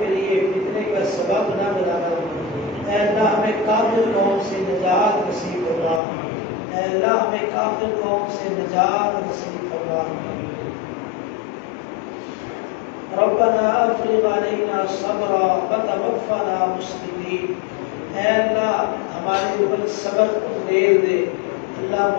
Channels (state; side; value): drops out; right; at 6.0 s